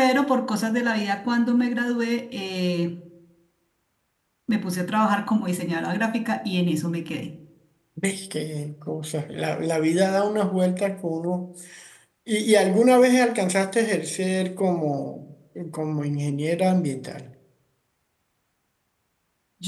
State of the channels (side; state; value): both; identical; correlation 1.00